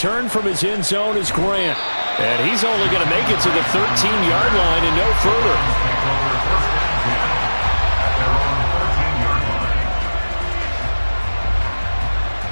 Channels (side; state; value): both; inverted; correlation -1.00